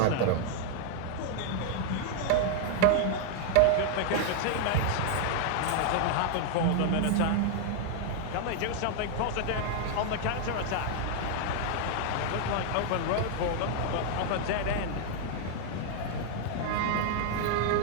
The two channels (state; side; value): different; both; correlation 0.00